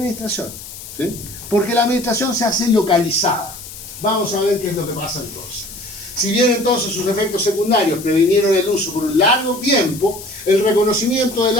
¿sí? Porque la administración se hace localizada. Vamos a ver qué es lo que pasa entonces. Si bien entonces sus efectos secundarios previnieron el uso por un largo tiempo, el reconocimiento del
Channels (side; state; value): left; noise; hiss, 13 dB below the sound